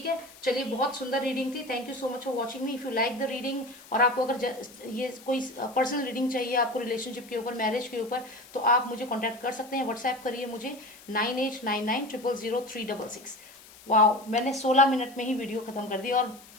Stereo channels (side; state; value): left; noise; hiss, 21 dB below the sound